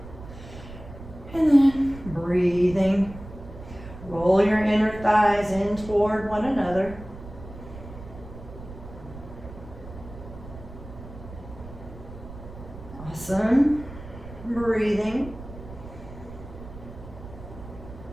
And then breathing. Roll your inner thighs in toward one another. Awesome. Breathing.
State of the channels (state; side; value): noise; right; rumble, 14 dB below the sound